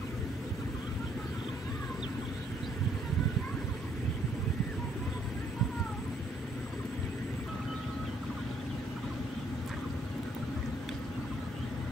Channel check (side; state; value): both; normal; correlation 0.67